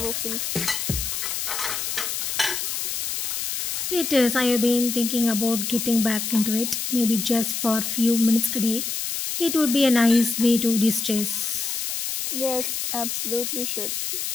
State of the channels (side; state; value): left; noise; hiss, 2 dB below the sound